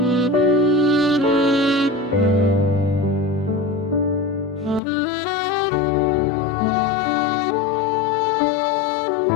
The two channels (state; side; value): drops out; right; at 4.8 s